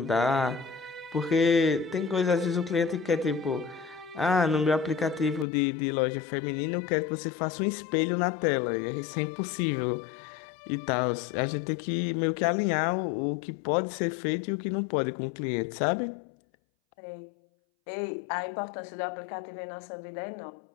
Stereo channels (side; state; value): right; drops out; at 5.5 s